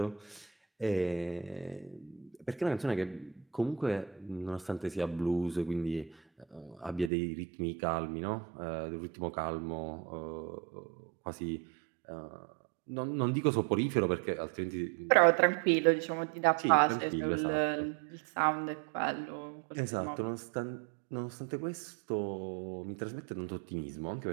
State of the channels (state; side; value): drops out; left; at 7.1 s